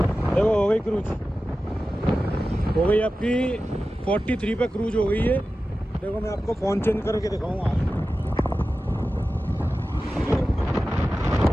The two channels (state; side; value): normal; both; correlation 0.94